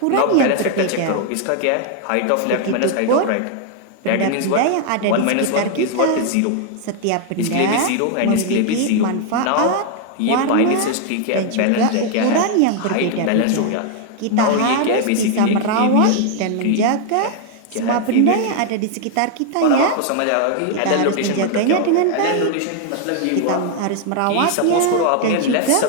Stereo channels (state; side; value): different; both; correlation 0.00